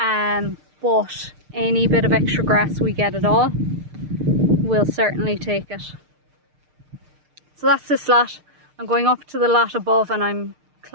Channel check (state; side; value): late; left; 6.6 ms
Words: any bit of extra grass we get at all, we'll certainly take it. So that's this lot. I'm going up to the lot above and I'm